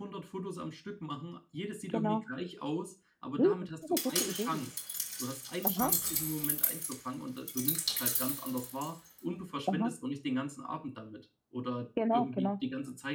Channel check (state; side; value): identical; both; correlation 1.00